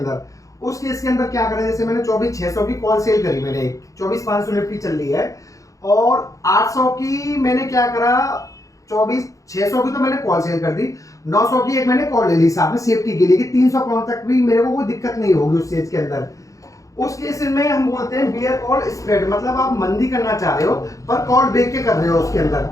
उस केस के अंदर क्या करें, जैसे मैंने 24,600 की कॉल सेल करी, मैंने 24,500 निफ्टी चल रही है और 800 की मैंने क्या करा, 24,600 की तो मैंने कॉल सेल कर दी, 900 की एक मैंने कॉल ले ली साथ में सेफ्टी के लिए कि 300 पॉइंट तक भी मेरे को कोई दिक्कत नहीं होगी उस चीज के अंदर। उस केस में हम बोलते हैं बियर कॉल स्प्रेड, मतलब आप मंदी करना चाह रहे हो पर कॉल बेच के कर रहे हो उसके अंदर।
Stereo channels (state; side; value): late; right; 0.16 ms